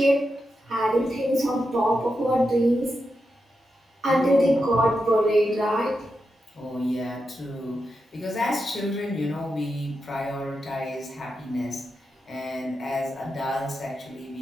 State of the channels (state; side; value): normal; both; correlation 0.87